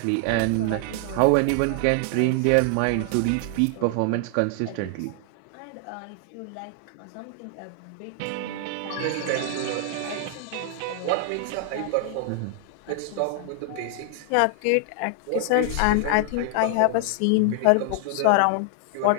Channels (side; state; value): both; different; correlation 0.00